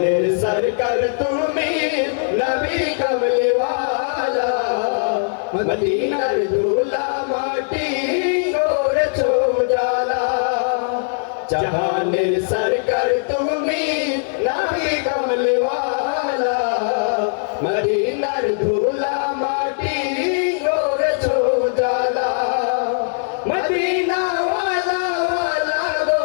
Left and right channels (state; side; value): silent; right; digital silence